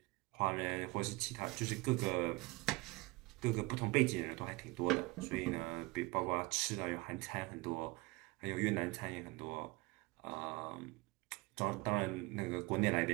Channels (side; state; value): left; quieter; 23.9 dB